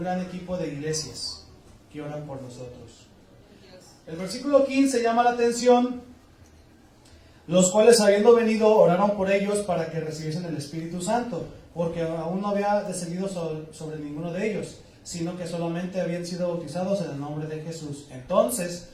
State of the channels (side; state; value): both; identical; correlation 1.00